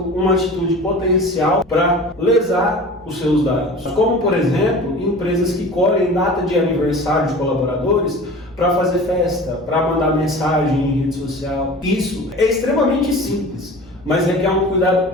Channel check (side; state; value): both; normal; correlation 0.38